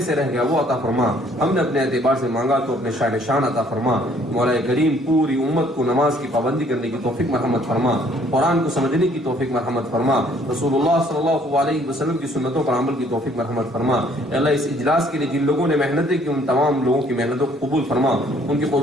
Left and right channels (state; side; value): normal; both; correlation 0.61